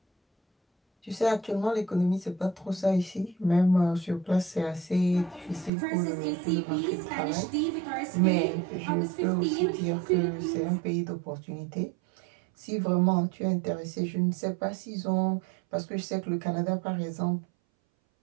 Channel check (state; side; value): drops out; left; at 5.7 s